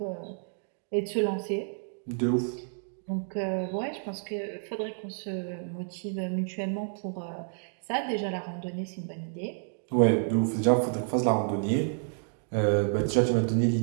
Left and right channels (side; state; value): left; silent; digital silence